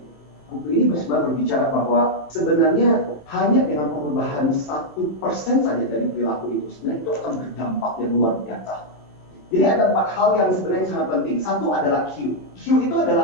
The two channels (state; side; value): late; right; 27 ms